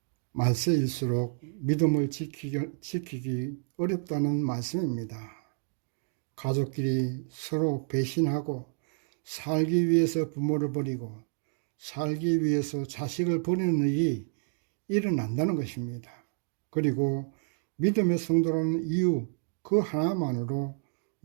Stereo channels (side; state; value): left; silent; 58 dB below the other